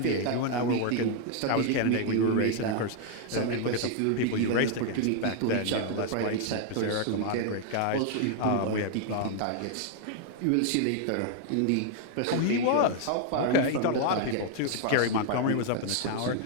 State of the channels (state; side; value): different; both; correlation 0.00